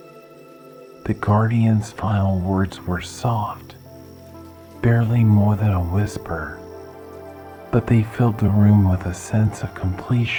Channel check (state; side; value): identical; both; correlation 1.00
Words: The guardian's final words were soft, barely more than a whisper, but they filled the room with a sense of